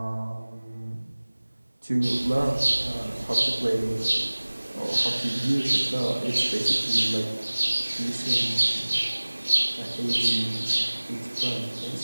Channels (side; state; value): both; inverted; correlation -1.00